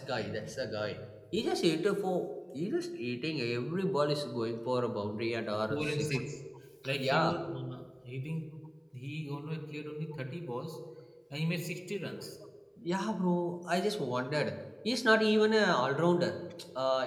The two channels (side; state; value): both; identical; correlation 1.00